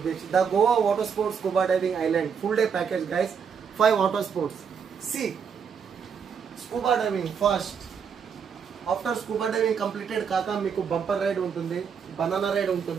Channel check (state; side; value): quieter; left; 6.7 dB